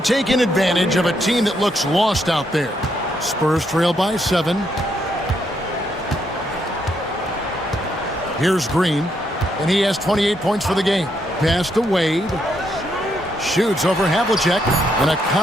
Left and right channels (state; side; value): normal; both; correlation 0.76